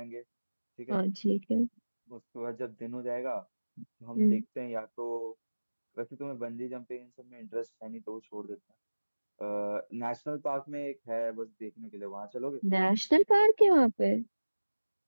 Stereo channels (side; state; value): both; inverted; correlation -1.00